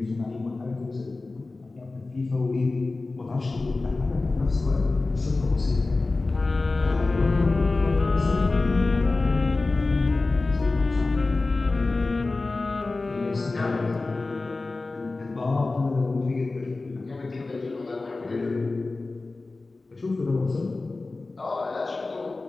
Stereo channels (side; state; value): right; quieter; 3.5 dB